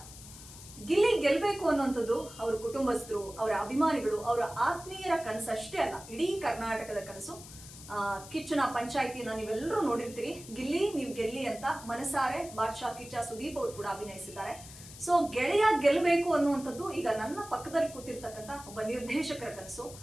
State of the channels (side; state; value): left; noise; hiss, 16 dB below the sound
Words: ಗಿಲ್ಲಿ ಗೆಲ್ಬೇಕು ಅನ್ನುವಂಥದ್ದು ಅವರ ಕುಟುಂಬಸ್ಥರು, ಅವರ ಅಭಿಮಾನಿಗಳು, ಅವರ ಆತ್ಮೀಯರ ಕನಸು ಅಷ್ಟೇ ಅಲ್ಲ, ಇಡೀ ಕರ್ನಾಟಕದ ಕನಸು. ಕಿಚ್ಚನ ಪಂಚಾಯಿತಿನ ನೀವೆಲ್ಲರೂ ನೋಡಿರ್ತೀರಿ. ಗಿಲ್ಲಿ ನೀವು ಗೆಲ್ಲಿ ಅಂತ ಮನಸಾರೆ ಬಾದ್ಶಾ ಕಿಚ್ಚ ಸುದೀಪ್ ಅವರು ಕೂಡ ಅಭಿನಯಿಸಿದ್ದಾರೆ. ಸೊ ಗೆಳೆಯ ಗೆಲ್ಲಬೇಕು ಅನ್ನುವಂಥದ್ದು ಈಗ ನನ್ನ ಪಕ್ಕದಲ್ಲಿ ಕೂತಿರ್ತಕ್ಕಂಥ ಒಬ್ಬ ನಿರ್ದೇಶಕರ ಕನಸು.